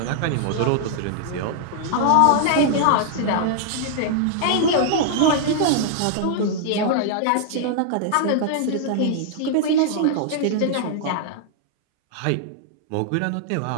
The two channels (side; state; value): both; different; correlation -0.01